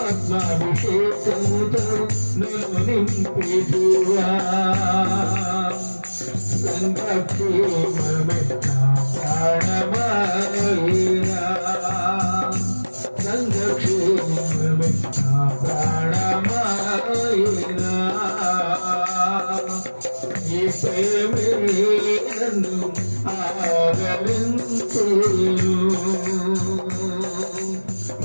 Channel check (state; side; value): inverted; both; correlation -1.00